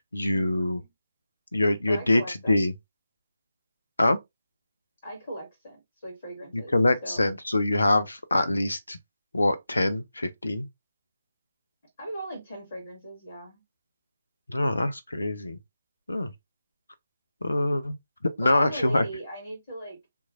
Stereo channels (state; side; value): inverted; both; correlation -0.93